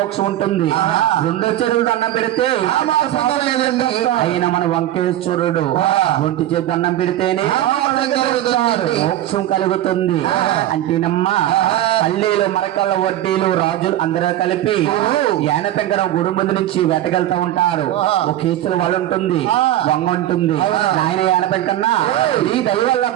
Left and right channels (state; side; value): quieter; left; 13.1 dB